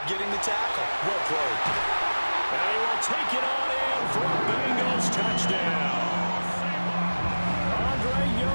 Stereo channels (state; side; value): inverted; both; correlation -1.00